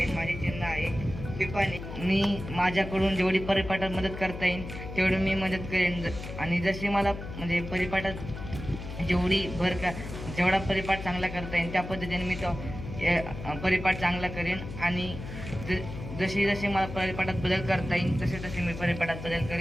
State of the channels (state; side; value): noise; left; hum, 9 dB below the sound